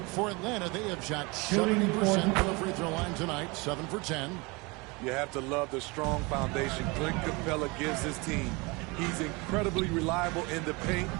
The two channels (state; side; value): quieter; left; 26.6 dB